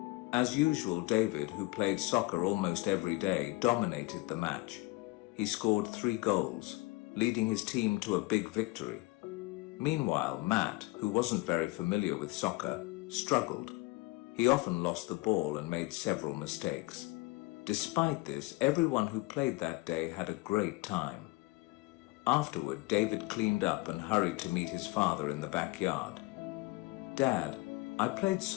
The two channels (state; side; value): quieter; right; 23.1 dB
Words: As usual, David, who played soccer almost every day, dominated the match. He scored 3 goals, leading his team to a big victory. Meanwhile, Matt, who wasn't very familiar with soccer, struggled. He often lost the ball and made several mistakes. Despite this, everyone who played that day had a great time. Afterward, David cleaned up and hurried to meet his father in the backyard. "Dad, I played